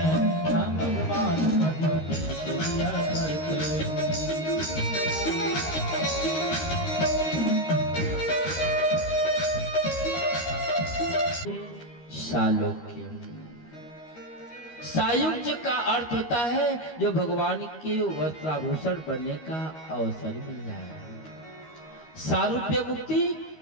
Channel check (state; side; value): late; right; 13 ms